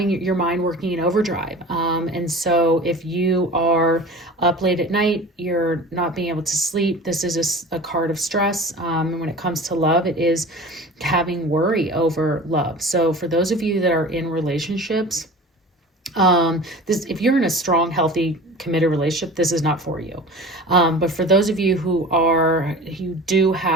your mind working in overdrive. And so if you are up late at night, you're not being able to sleep, this is a card of stress. And when it comes to love, it is having worry over love. So for those of you that are in relationships, if you're in a strong, healthy, committed relationship, this is not for you. But for those of you who do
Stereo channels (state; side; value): normal; both; correlation 0.38